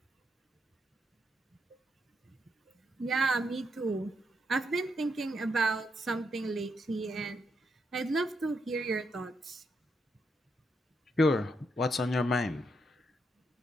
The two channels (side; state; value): both; normal; correlation 0.80